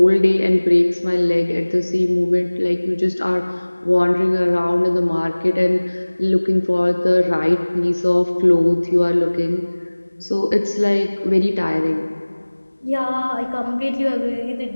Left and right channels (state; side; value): inverted; both; correlation -1.00